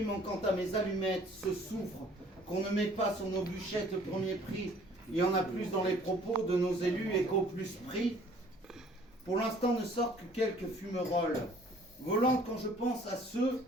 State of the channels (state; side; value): normal; both; correlation 0.55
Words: manquant à mes allumettes, ce souffre, qu'on ne met pas sur nos bûchettes le premier prix. Il y en a plus dans les propos de nos élus et qu'au plus prix. Pour l'instant ne sortent que quelques fumerolles, volantes quand je pense à ceux